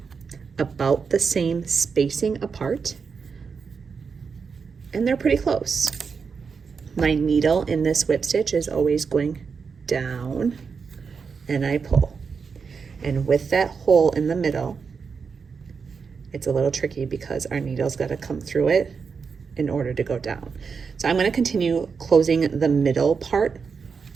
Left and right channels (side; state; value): left; quieter; 5.6 dB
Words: about the same spacing apart, and they're pretty close. My needle in this whip stitch is always going down, and I pull. And with that hole in the middle, it's a little tricky because our needle's got to come through it in order to go down. So I'm going to continue closing the middle part,